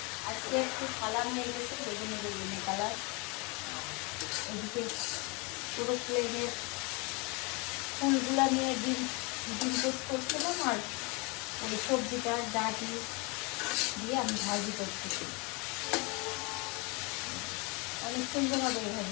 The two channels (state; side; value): quieter; right; 29.6 dB